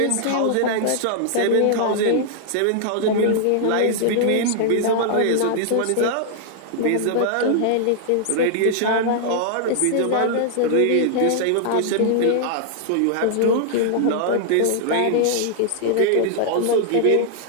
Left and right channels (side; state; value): both; different; correlation -0.01